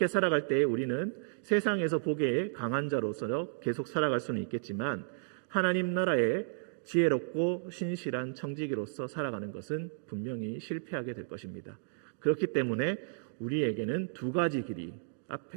살아갈 때에 우리는 세상에서 보기에 강한 자로서 계속 살아갈 수는 있겠지만 하나님 나라의 지혜롭고 신실한 청지기로서 살아가는 것은 분명히 실패하게 될 것입니다. 그렇기 때문에 우리에게는 두 가지 길이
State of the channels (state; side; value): silent; left; digital silence